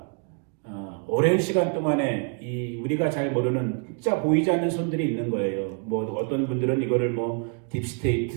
오랜 시간 동안에 이 우리가 잘 모르는 진짜 보이지 않는 손들이 있는 거예요. 뭐 어떤 분들은 이거를 뭐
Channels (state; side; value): quieter; left; 39.6 dB